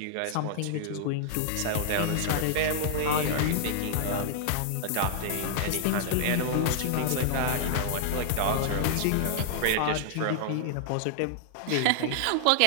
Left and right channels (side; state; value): both; different; correlation -0.01